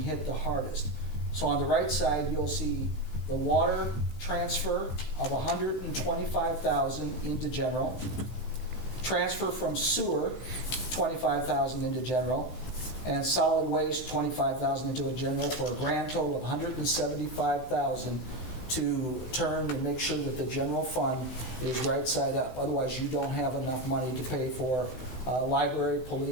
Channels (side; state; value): right; late; 16 ms